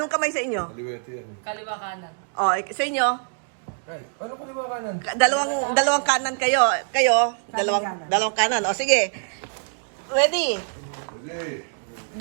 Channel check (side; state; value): left; silent; digital silence